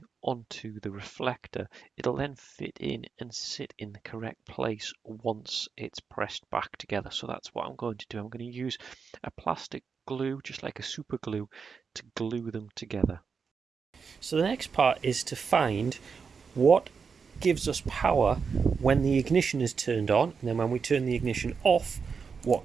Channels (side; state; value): left; quieter; 5.7 dB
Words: onto the reflector. It'll then fit in and sit in the correct place once it's pressed back together. So that's what I'm going to do. I'm going to use a plastic glue, just like a super glue, to glue them together. So the next part is to find what gives us power when the ignition is turned on, and then when we turn the ignition off,